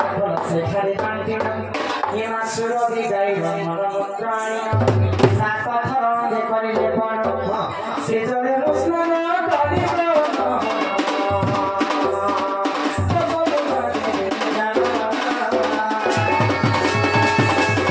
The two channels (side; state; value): both; identical; correlation 1.00